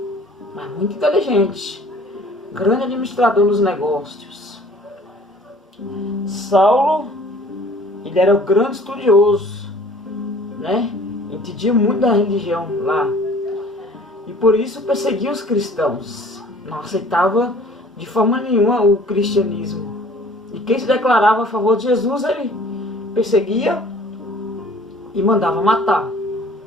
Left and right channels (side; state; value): both; normal; correlation 0.52